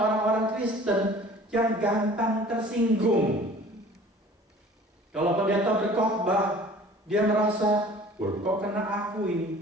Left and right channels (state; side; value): normal; both; correlation 0.47